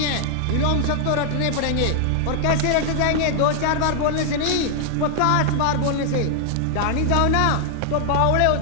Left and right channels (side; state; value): both; different; correlation 0.00